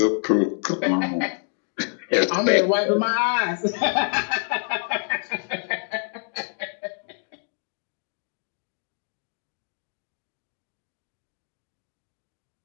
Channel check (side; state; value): right; silent; 57 dB below the other